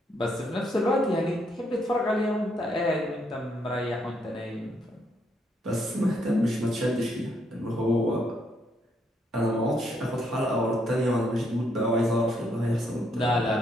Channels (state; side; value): normal; both; correlation 0.74